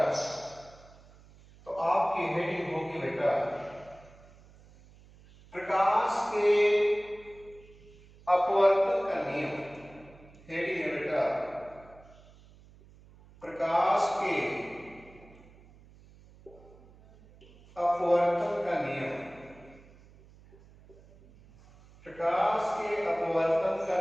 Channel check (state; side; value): noise; right; hum, 24 dB below the sound